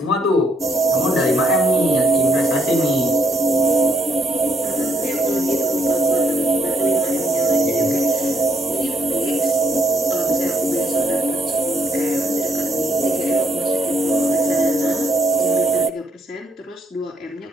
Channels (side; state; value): both; normal; correlation 0.71